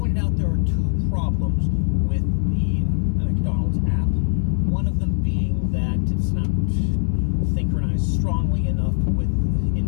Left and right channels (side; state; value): right; silent; digital silence